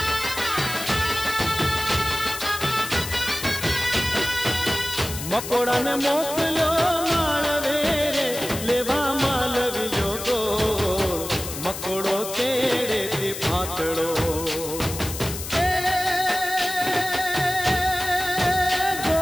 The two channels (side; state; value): left; noise; hiss, 8 dB below the sound